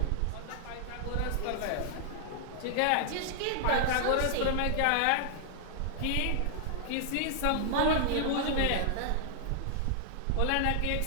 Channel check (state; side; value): different; both; correlation -0.01